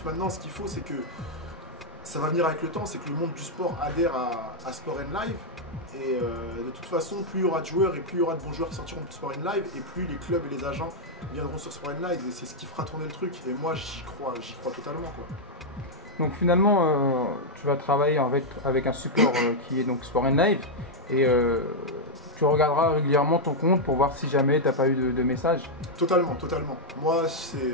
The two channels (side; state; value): both; normal; correlation -0.03